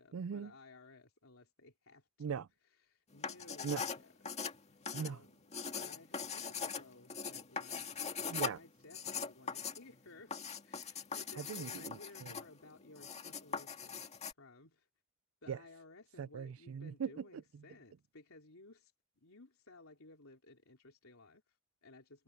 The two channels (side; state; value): both; normal; correlation 0.01